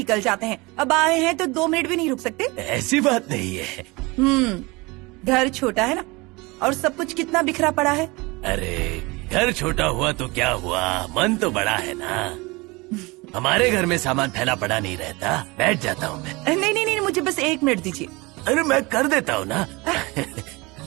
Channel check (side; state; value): left; quieter; 24.5 dB